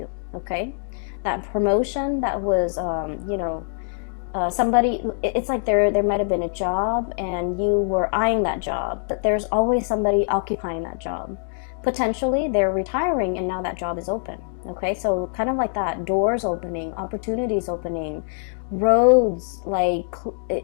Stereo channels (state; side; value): silent; right; digital silence